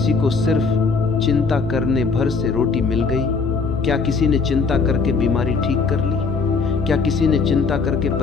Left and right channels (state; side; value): quieter; right; 4.6 dB